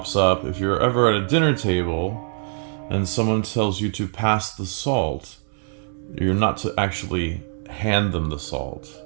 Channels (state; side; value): silent; left; digital silence